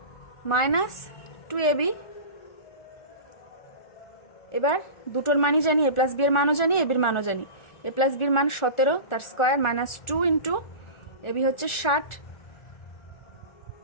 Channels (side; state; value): right; late; 1.4 ms